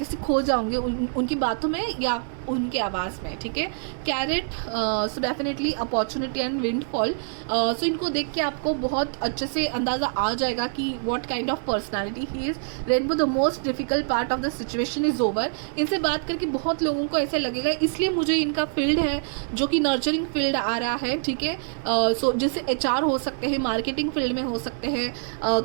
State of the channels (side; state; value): left; silent; digital silence